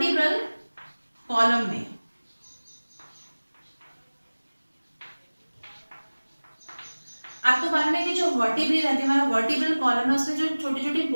कॉलम में। आपको मालूम है कि जो वर्टिब्री रहती है, हमारा वर्टिब्रल कॉलम है, उसमें जो छोटी छोटी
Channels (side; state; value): both; inverted; correlation -1.00